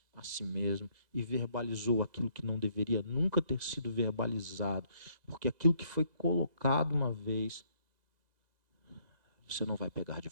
a si mesmo e verbalizou aquilo que não deveria nunca ter sido verbalizado, porque aquilo que foi colocado uma vez, você não vai pegar de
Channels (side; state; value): left; late; 1.9 ms